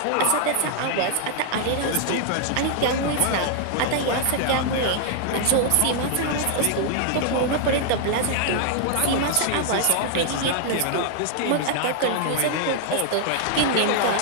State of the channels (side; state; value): both; different; correlation 0.00